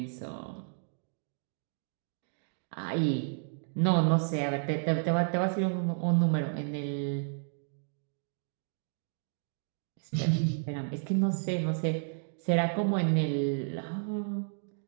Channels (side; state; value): left; silent; digital silence